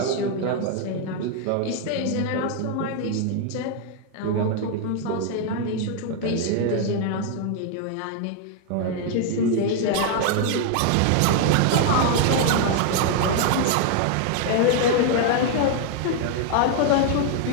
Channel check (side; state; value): both; different; correlation 0.00